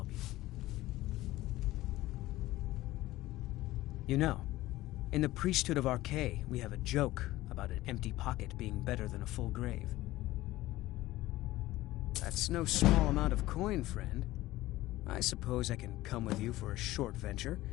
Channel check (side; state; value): right; quieter; 16.9 dB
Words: you. You know, in the priesthood of Arkay, we have a joke about an empty pocket being better than a full grave. That's no small amount of coin, friend. I suppose I can come with you for a short venture.